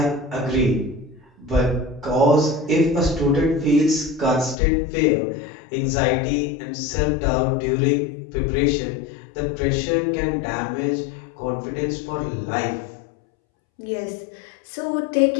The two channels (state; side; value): drops out; right; at 4.5 s